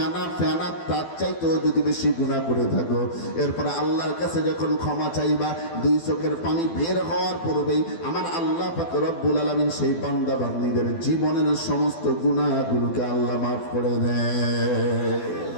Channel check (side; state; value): right; late; 12 ms